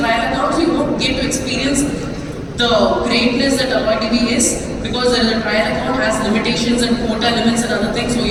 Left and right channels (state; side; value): identical; both; correlation 1.00